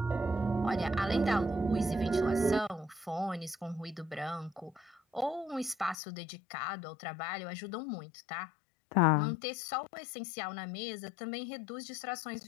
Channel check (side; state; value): right; drops out; at 6.0 s